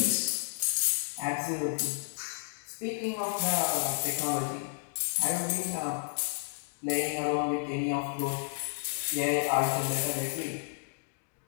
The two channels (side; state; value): right; silent; digital silence